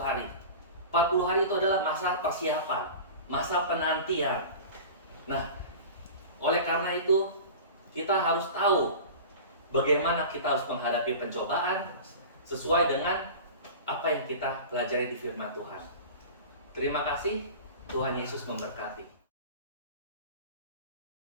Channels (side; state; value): both; inverted; correlation -0.35